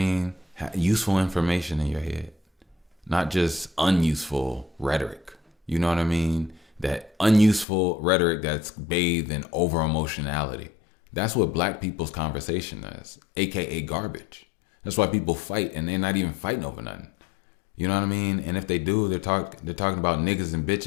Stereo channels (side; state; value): right; drops out; at 7.7 s